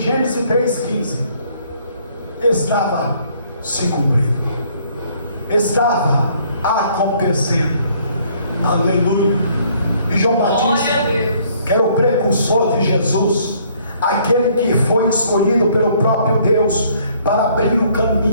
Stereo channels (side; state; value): both; inverted; correlation -0.63